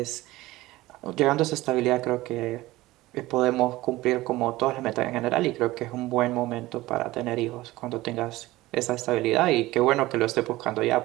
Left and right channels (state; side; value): quieter; left; 18.2 dB